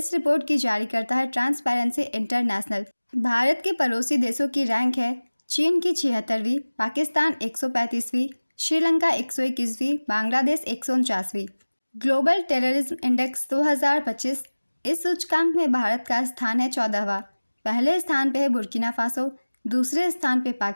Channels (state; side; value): inverted; both; correlation -1.00